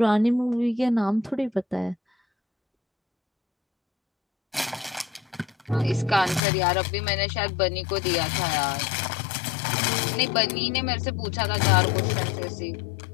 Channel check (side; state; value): right; drops out; at 6.4 s